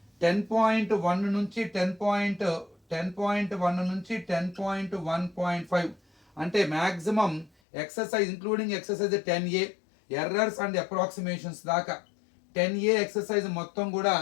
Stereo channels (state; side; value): drops out; right; at 7.5 s